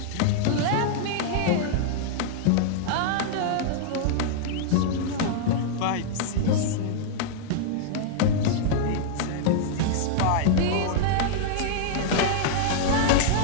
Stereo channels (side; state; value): both; different; correlation -0.01